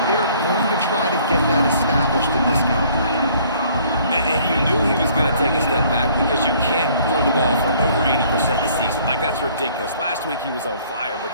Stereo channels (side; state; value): both; inverted; correlation -0.58